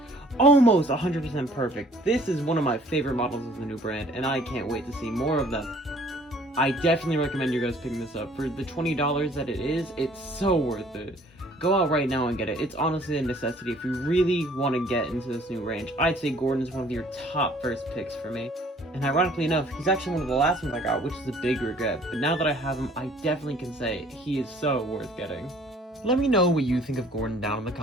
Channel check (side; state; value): both; normal; correlation 0.56